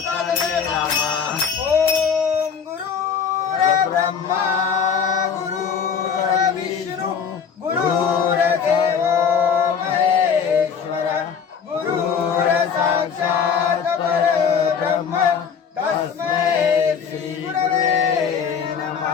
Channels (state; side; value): quieter; right; 6.7 dB